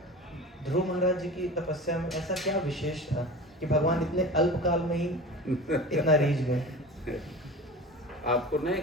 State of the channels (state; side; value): normal; both; correlation 0.35